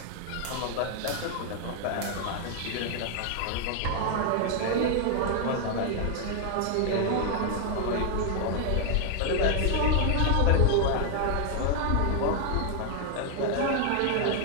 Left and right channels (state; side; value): different; both; correlation 0.00